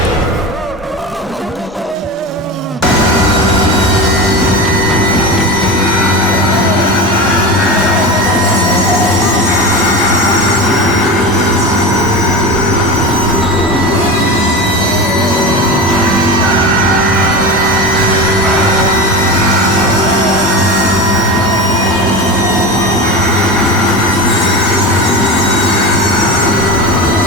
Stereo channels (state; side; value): normal; both; correlation 0.26